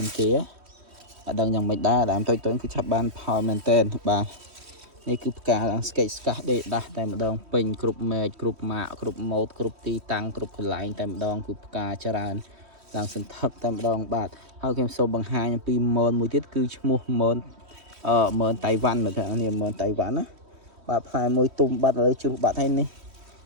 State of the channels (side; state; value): left; late; 3.1 ms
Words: នគេអត់ដឹងយ៉ាងម៉េចដែរដើមតូចគឺឆាប់បានផលមែនតើបាទនេះគឺផ្កាឡើងស្កេស្កាស់ដេកដាស់តែម្ដងពេញគ្រប់មែកគ្រប់ម៉ាកគ្រប់ម៉ូតគ្រប់ទីតាំងគ្រប់កន្លែងតែម្ដងគឺផ្កាច្រើនឡើងសន្ធឹកតែម្ដងបាទហើយខ្ញុំសូមបង្ហាញអំពីមនមួយទៀតគឺឈ្មោះមនមនតៃវ៉ាន់មើលថានេះមនតៃវ៉ាន់ណាបាទផ្លែមួយទុំបាត់ឥឡូវជ្រុះបាត់ហើយនេះ